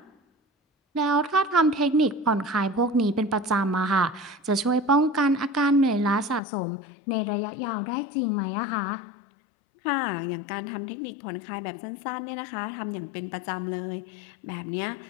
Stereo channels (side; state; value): right; drops out; at 6.4 s